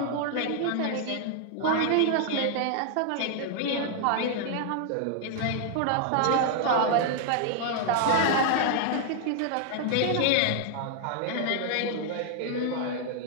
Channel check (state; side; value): different; both; correlation 0.00